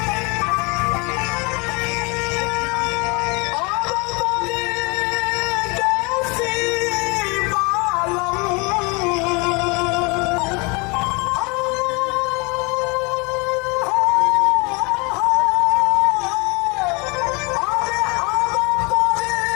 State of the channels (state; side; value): quieter; right; 28.9 dB